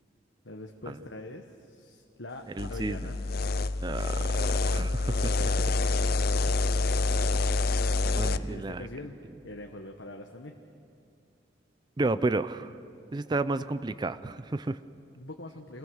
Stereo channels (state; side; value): normal; both; correlation 0.68